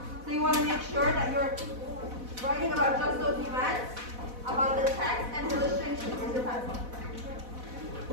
So you want to make sure that you're writing about just those events, about the text and illustrations. Where's your pencil?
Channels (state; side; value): late; left; 4.1 ms